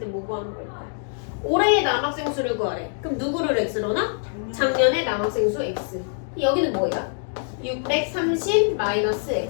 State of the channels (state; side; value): silent; right; digital silence